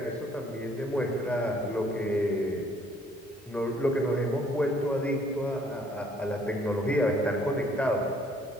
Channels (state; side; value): normal; both; correlation 0.63